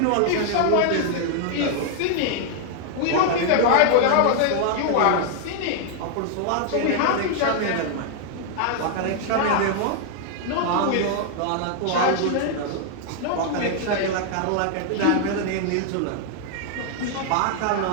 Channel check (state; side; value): different; both; correlation 0.00